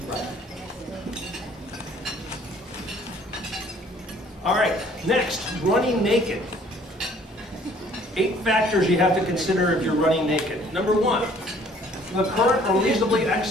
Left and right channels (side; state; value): both; normal; correlation 0.57